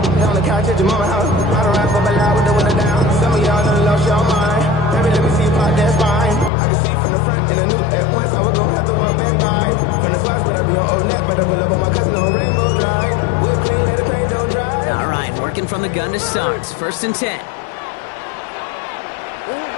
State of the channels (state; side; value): drops out; right; at 6.5 s